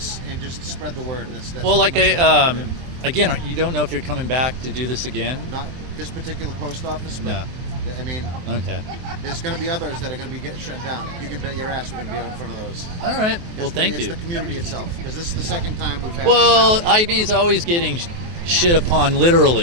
and just spread the word. That's Well, like much what we do. again, you don't know if you're coming back to do this again. Not this particular post office, but No. I mean, Okay. there's going to be others that are going to be shut down. You can bet your ass we're going to be out in front of those. All right. Well, thank It's you. the community itself, because this is the second time we've had. Well, it. IB's always getting shit upon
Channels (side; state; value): left; late; 23 ms